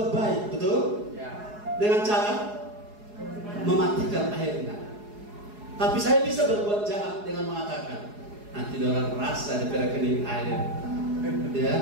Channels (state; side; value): late; left; 4.8 ms